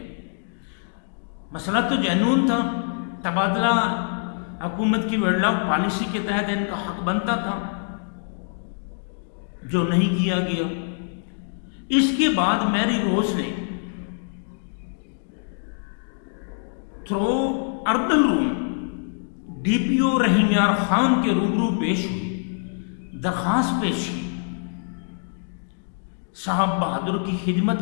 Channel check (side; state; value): right; silent; digital silence